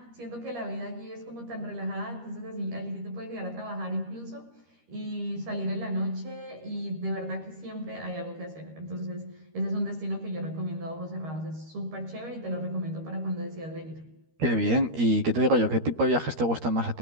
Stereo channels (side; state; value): left; late; 13 ms